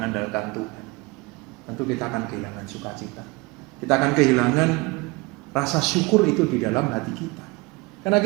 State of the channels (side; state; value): left; quieter; 24.6 dB